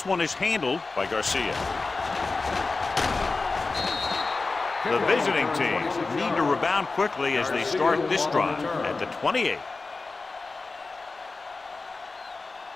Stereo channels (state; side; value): quieter; right; 3.8 dB